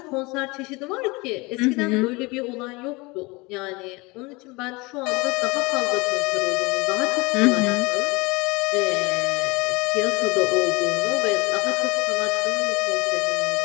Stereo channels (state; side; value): quieter; right; 24.9 dB